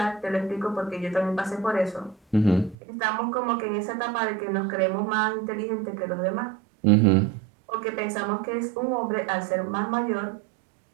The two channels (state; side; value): drops out; left; at 2.8 s